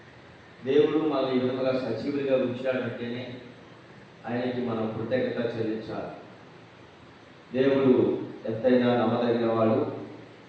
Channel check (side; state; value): both; identical; correlation 1.00